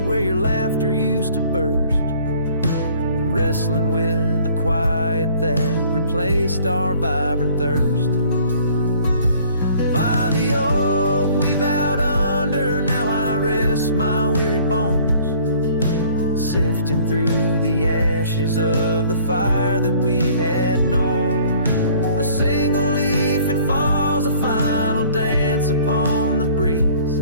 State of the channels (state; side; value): inverted; both; correlation -0.55